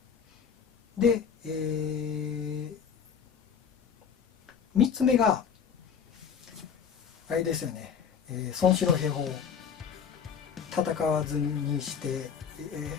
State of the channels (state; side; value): quieter; right; 7.1 dB